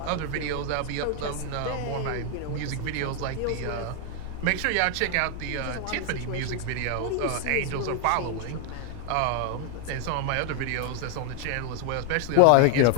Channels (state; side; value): different; both; correlation 0.00